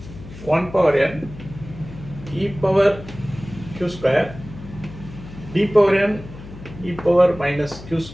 1 power n e power q square d power n e power minus q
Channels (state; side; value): noise; left; hum, 15 dB below the sound